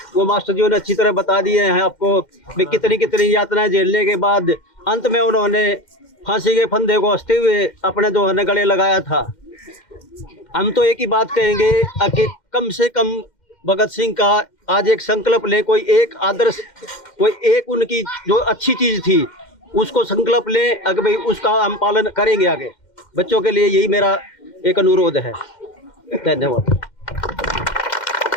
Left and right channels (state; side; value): late; right; 2.1 ms